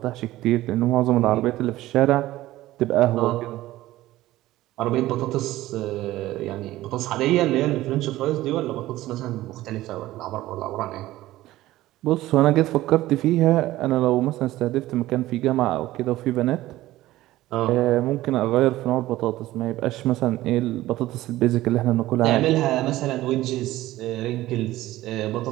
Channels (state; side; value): quieter; left; 16.1 dB